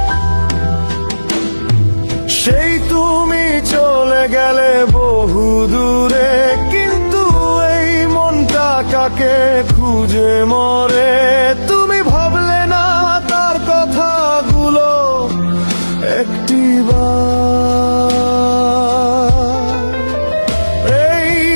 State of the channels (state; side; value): inverted; both; correlation -1.00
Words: সেই তুমি চলে গেলে বহু দূরে, কিন্তু এই মনটা কাকে খুঁজে মরে। তুমি ভাবলে না তার কথাগুলো একটিবার, এই